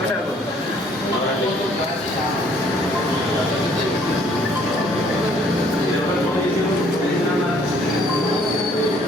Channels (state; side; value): normal; both; correlation 0.61